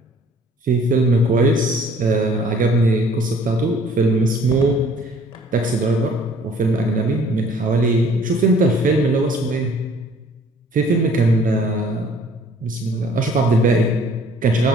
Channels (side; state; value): both; normal; correlation 0.55